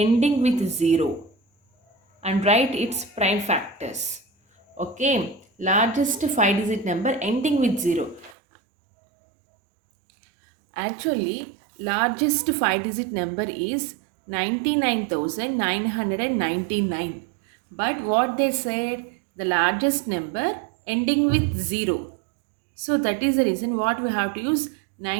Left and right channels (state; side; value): drops out; left; at 8.3 s